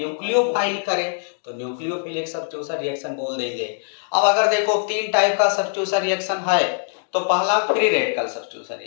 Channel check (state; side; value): silent; right; 58 dB below the other